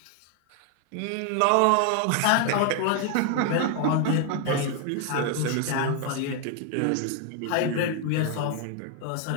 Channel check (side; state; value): both; different; correlation 0.01